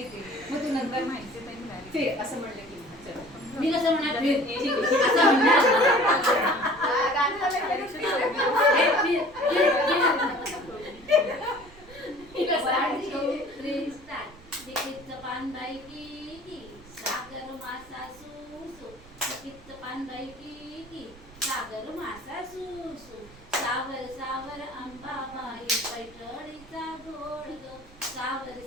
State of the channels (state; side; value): noise; right; rumble, 22 dB below the sound